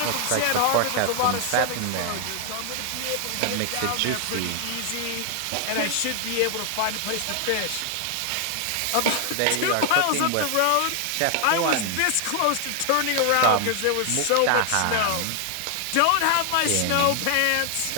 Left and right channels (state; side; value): different; both; correlation 0.00